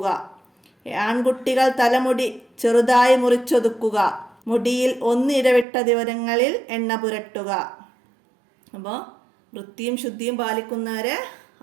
ആൺകുട്ടികൾ തലമുടി ചെറുതായി മുറിച്ചൊതുക്കുക. മുടിയിൽ ഒന്നിടവിട്ട ദിവസങ്ങളിൽ എണ്ണ പുരട്ടുക. അപ്പോൾ വൃത്തിയും ശുദ്ധിയും പാലിക്കുന്നവരെ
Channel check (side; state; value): left; drops out; at 5.7 s